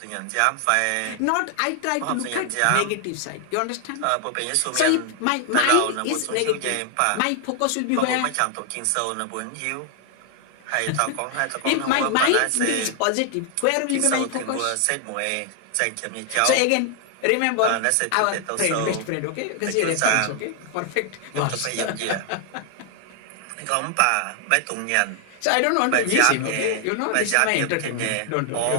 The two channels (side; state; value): both; different; correlation 0.00